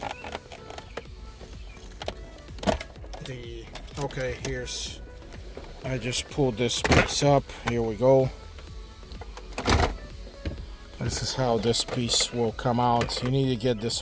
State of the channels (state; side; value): identical; both; correlation 1.00